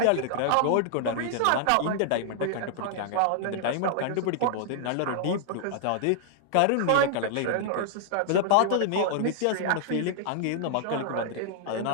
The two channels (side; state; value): both; different; correlation -0.01